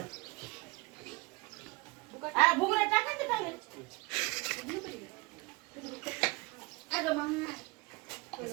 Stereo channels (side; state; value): left; quieter; 25.2 dB